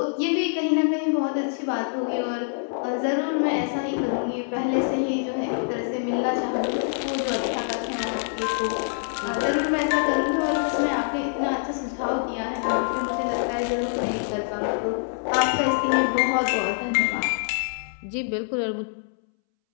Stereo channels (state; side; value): silent; right; 62 dB below the other